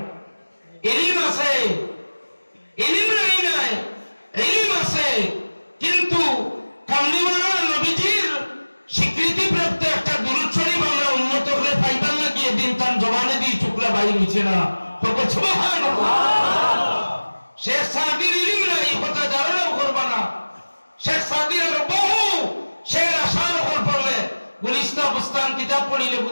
ইলম আছে, ইলম নাই, ইলম আছে, কিন্তু কামলিওয়ালা নবীজির স্বীকৃতি প্রাপ্ত একটা দুরূদ শরীফ আমরা উন্নত করে পাইবার লাগিয়ে দিন তার জবানে দিয়ে টুকরা বাইর হইছে না। সুবহানাল্লাহ। শেখ সাদির ইলম নাই, কথা ধারণাও করবা না। শেখ সাদির বহু শের আশার উপর পড়লে গুলিস্তা বুস্তান কিতাব পড়িলে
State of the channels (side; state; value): both; inverted; correlation -1.00